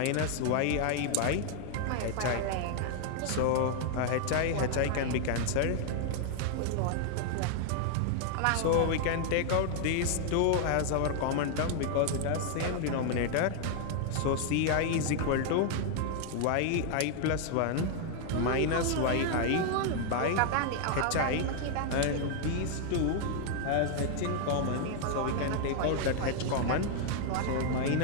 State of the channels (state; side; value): different; both; correlation 0.00